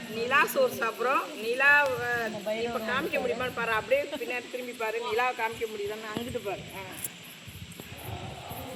நிலா சோறு சாப்பிட்றோம். நிலா இப்போ காமிக்க முடியுமான்னு பாரு, அப்படியே பின்னாடி திரும்பி பாரு. நிலாவை காமிக்க முடியுதான்னு அங்கிட்டு பாரு.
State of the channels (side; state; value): both; identical; correlation 1.00